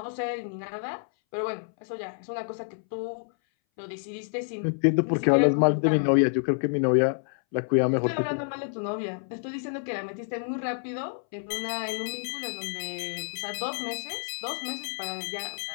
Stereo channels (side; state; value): right; silent; 59 dB below the other